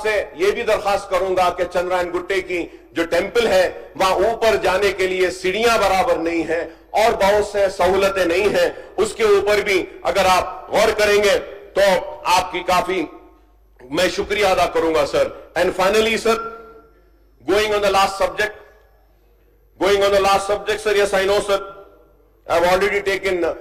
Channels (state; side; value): identical; both; correlation 1.00